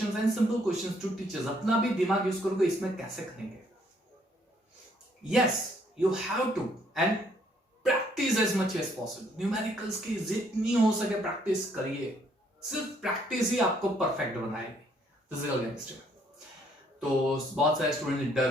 and simple questions to teachers, अपना भी दिमाग यूज करोगे, इसमें कैसे करेंगे? Yes, you have to, and practice as much as possible. Numericals की जितनी हो सके प्रैक्टिस करिए, सिर्फ प्रैक्टिस ही आपको परफेक्ट बनाएगी फिजिकल केमिस्ट्री में। तो बहुत सारे स्टूडेंट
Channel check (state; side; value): normal; both; correlation 0.67